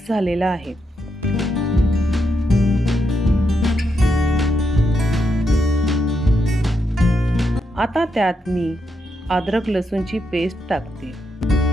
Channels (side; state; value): both; normal; correlation 0.81